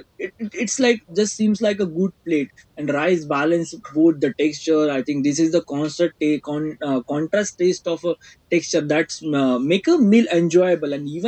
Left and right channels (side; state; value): both; identical; correlation 1.00